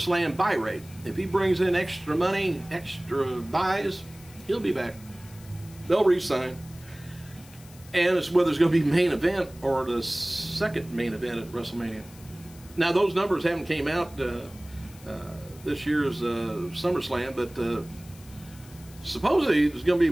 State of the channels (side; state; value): left; noise; hiss, 22 dB below the sound